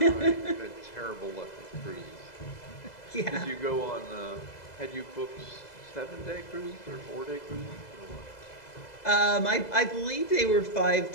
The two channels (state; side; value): late; right; 2.0 ms